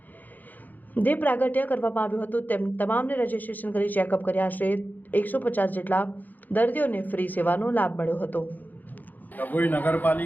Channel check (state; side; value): late; right; 0.084 ms